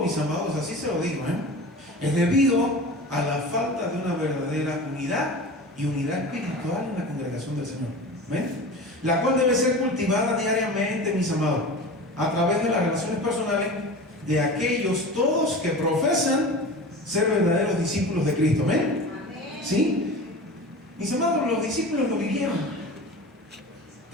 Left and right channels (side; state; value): both; normal; correlation 0.33